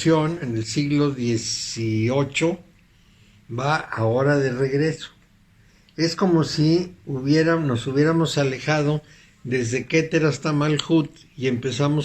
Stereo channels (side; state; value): both; identical; correlation 1.00